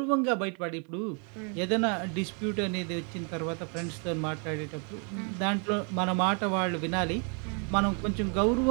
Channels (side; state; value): left; quieter; 38.1 dB